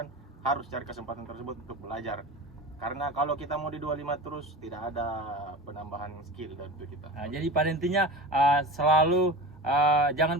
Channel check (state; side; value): normal; both; correlation 0.32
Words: harus cari kesempatan tersebut untuk belajar. Karena kalau kita mau di 25 terus, tidak ada penambahan skill dari itu kita. Jadi pada intinya selalu